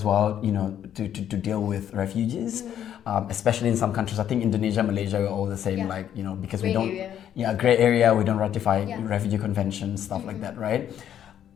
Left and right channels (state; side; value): quieter; right; 10.1 dB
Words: well, to deal with refugees, especially in some countries. I think Indonesia, Malaysia are all the same, because we Gray don't. area. Yeah, gray area. We don't ratify refugee conventions, stuff like that, right?